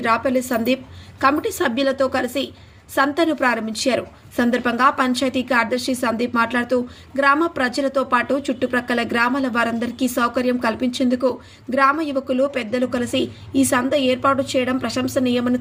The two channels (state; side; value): identical; both; correlation 1.00